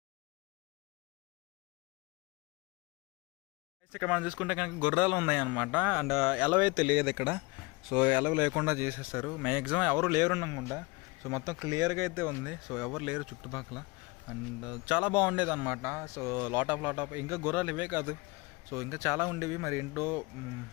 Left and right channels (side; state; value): right; quieter; 25.3 dB